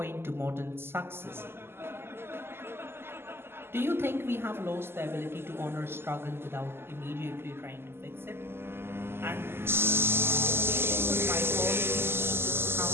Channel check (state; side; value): late; left; 0.12 ms